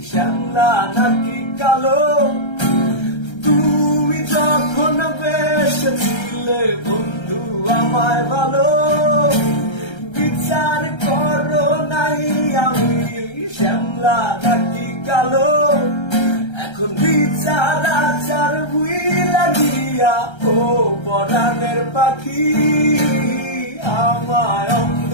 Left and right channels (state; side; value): late; right; 1.3 ms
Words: শ্যামলা নাকি কালো। তুমি যখন বেসেছিলে বন্ধু আমায় ভালো, বিচার করো নাই আমি শ্যামলা নাকি কালো। এখন বিচার আচার বুই লাগিয়া ও পরাণের পাখি, আমায়